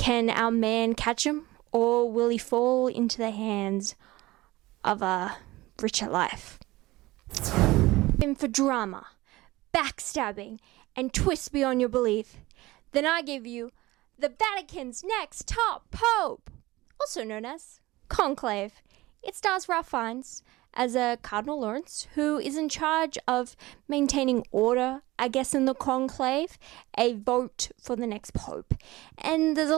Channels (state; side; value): quieter; left; 19.3 dB